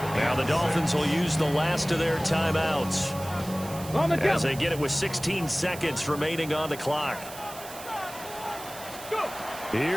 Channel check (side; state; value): right; noise; hiss, 14 dB below the sound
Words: Now the Dolphins will use the last of their timeouts as they get it with 16 seconds remaining on the clock.